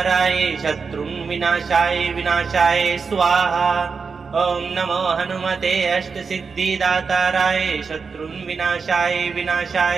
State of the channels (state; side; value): quieter; left; 5.2 dB